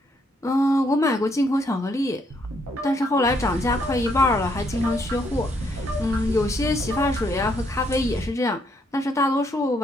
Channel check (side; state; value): both; normal; correlation 0.72